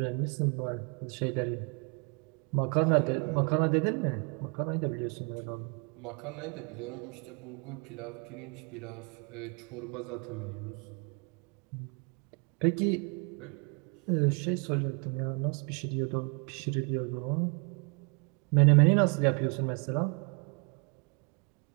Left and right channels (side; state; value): left; quieter; 36.0 dB